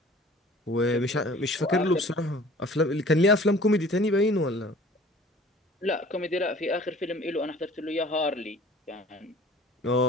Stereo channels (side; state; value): both; normal; correlation 0.48